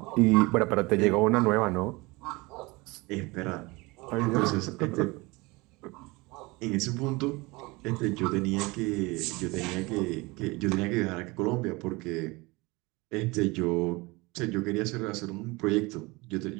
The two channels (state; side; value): quieter; left; 24.0 dB